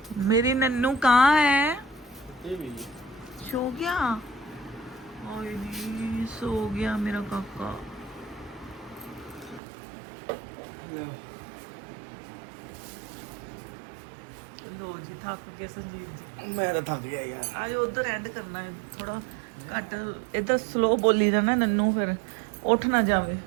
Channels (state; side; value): drops out; left; at 9.6 s